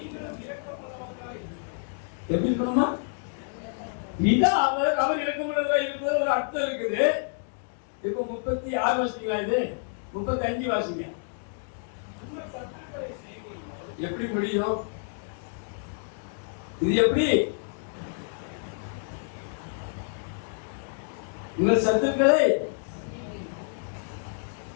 எப்படி இருக்கணுமா? பிதா அவர் இரக்கமுள்ளவரா இருக்கிறது ஒரு அர்த்தம் இருக்குது. இப்ப 36 வாசிங்களா, இது 35 வாசிங்க. எப்படி முடியும் இது? எப்படி உங்கள் சத்துக்களை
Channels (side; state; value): right; silent; digital silence